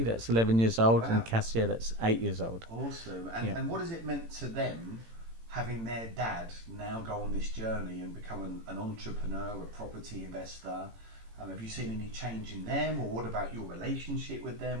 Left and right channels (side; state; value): left; late; 18 ms